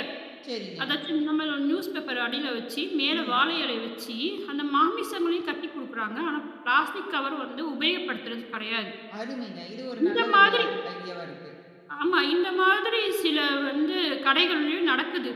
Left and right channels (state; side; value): identical; both; correlation 1.00